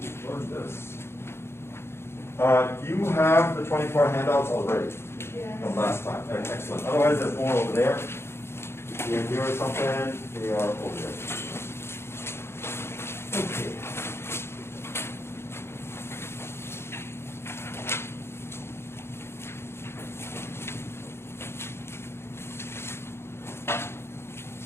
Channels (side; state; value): right; late; 0.12 ms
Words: learn this. You have the 24 handouts already from last time. Excellent. Otherwise, there's more over there. Here or something, they are over there. Okay.